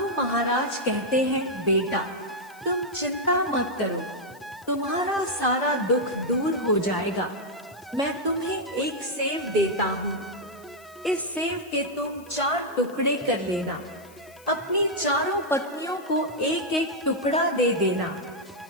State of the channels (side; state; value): left; noise; hiss, 24 dB below the sound